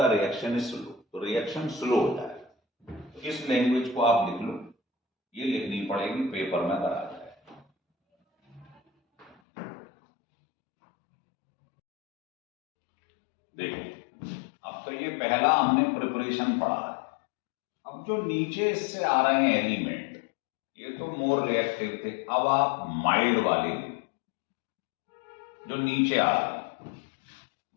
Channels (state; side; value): drops out; right; at 9.3 s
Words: reaction is slow, तो रिएक्शन स्लो होता है। तो इस लैंग्वेज को आप लिख लो, ये लिखनी पड़ेगी, पेपर में करा जाए। देखो अब तो ये पहला हमने प्रिपरेशन पढ़ा है। अब जो नीचे इससे आ रहे हैं एलिमेंट, ये तो मोर रिएक्टिव थे। अब आप माइल्ड वाले ले, जो नीचे आ रहे हैं